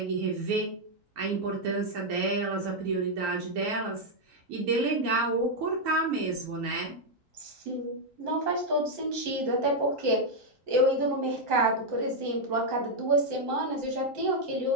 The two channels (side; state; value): left; late; 3.8 ms